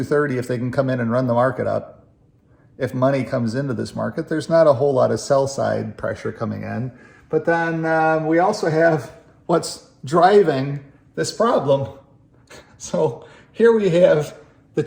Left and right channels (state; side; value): identical; both; correlation 1.00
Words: if they can come in and run the market up. If money comes into this market, there's not a whole lot of sell side pressure coming in. But then we also have what's driving this problem. So here we have the